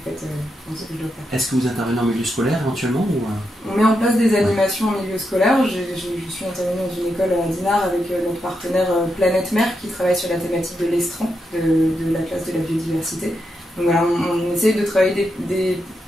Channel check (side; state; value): both; normal; correlation 0.84